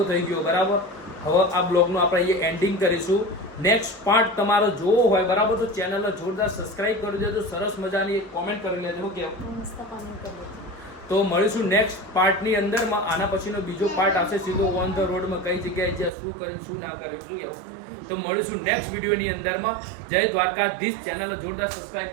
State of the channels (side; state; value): left; drops out; at 16.1 s